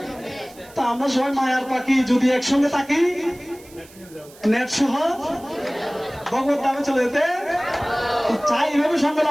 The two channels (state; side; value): noise; right; hiss, 23 dB below the sound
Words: তা আমরা সবাই মায়ার পাখি যদি একসঙ্গে থাকি, নেট সহ ভগবত ধামে চলে যেতে চাই, এভাবে সঙ্গে